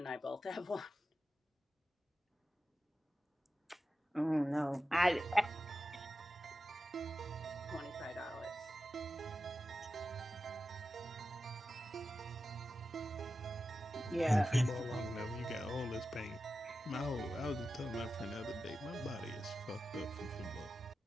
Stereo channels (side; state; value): both; normal; correlation 0.92